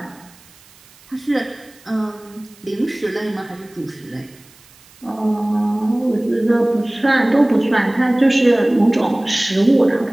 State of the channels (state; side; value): noise; right; hiss, 27 dB below the sound